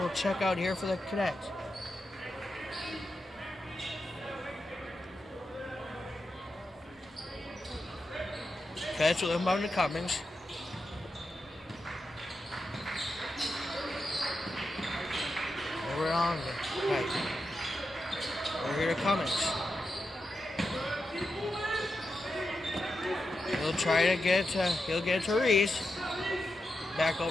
check out here for the Cadets. Cadets will inbound to Cummings. Over on the right. Over here to Cummings. He'll try to he'll get to Reese. Back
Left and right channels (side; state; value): both; normal; correlation 0.88